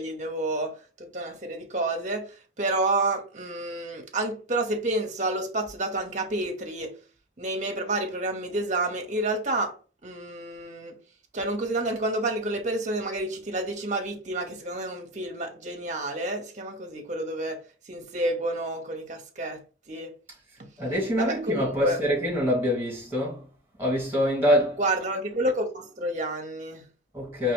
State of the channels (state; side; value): normal; both; correlation 0.21